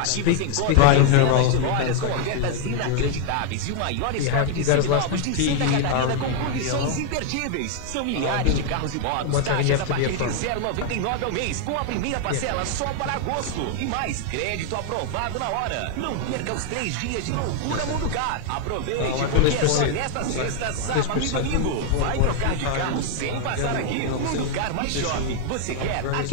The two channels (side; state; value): both; different; correlation 0.00